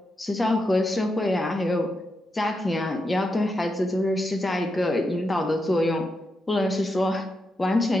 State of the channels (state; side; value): normal; both; correlation 0.85